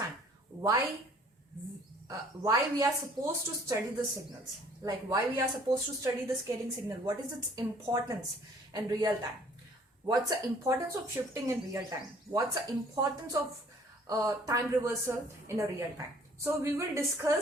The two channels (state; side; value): normal; both; correlation 0.56